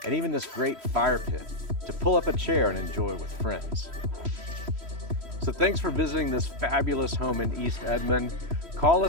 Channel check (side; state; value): left; late; 3.1 ms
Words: and even this great fire pit to pull up a chair and enjoy with friends. So thanks for visiting this fabulous home in East Edmond. Call